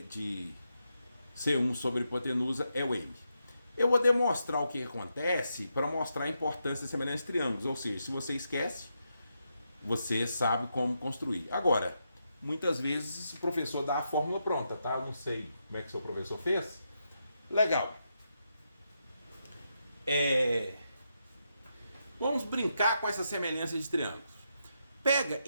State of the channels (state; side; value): inverted; both; correlation -0.83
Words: C1 sobre a hipotenusa é o N. Eu vou demonstrar o que acontece para mostrar a importância da semelhança de triângulos. Ou seja, se você esquece, você sabe como construir. Agora, muitas vezes o professor dá a fórmula pronta, tá? Eu não sei como é que o seu professor fez. Legal. Vamos brincar com essa semelhança de triângulos. Pega